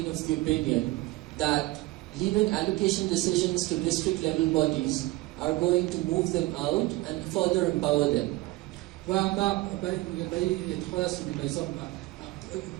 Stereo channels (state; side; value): quieter; left; 19.7 dB